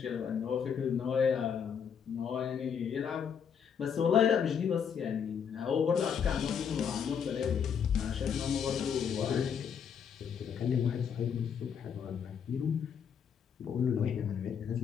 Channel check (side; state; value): right; quieter; 7.4 dB